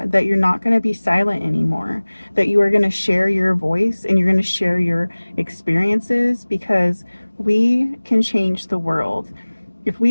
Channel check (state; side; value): inverted; both; correlation -1.00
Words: that you're not going to be silent anymore, that you are going to share your voice and you're going to share your experiences, because we can change the world. If